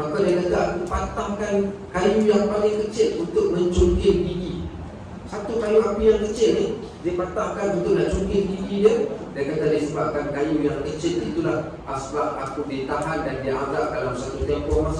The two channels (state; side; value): identical; both; correlation 1.00